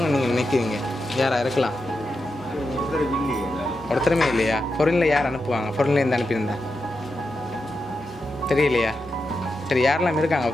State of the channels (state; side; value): normal; both; correlation 0.88